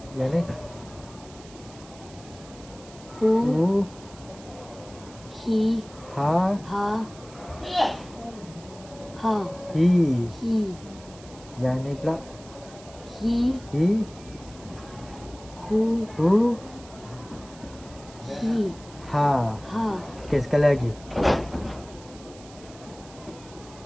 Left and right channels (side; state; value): right; noise; hiss, 21 dB below the sound